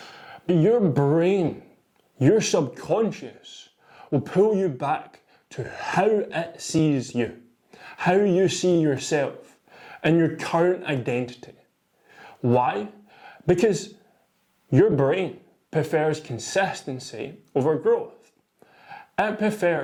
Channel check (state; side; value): identical; both; correlation 1.00